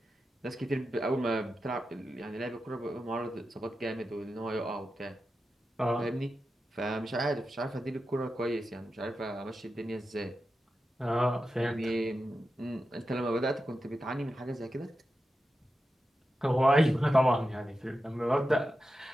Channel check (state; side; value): normal; both; correlation 0.91